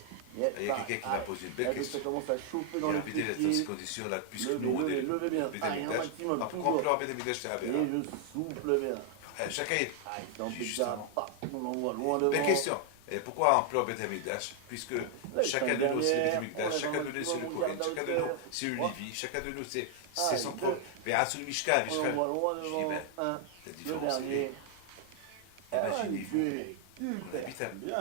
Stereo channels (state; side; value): different; both; correlation 0.00